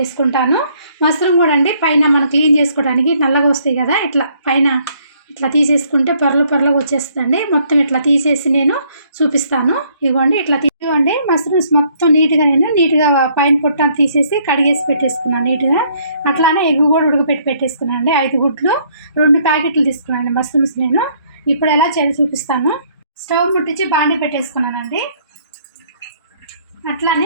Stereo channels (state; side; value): inverted; both; correlation -0.66